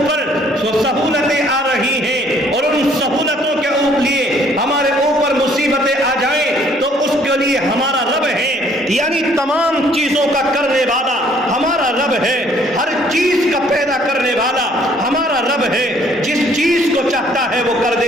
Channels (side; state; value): both; normal; correlation 0.61